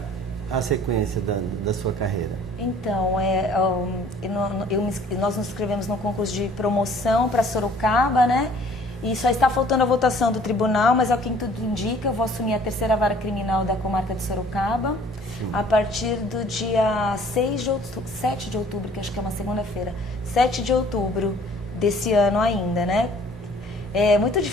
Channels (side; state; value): both; normal; correlation 0.54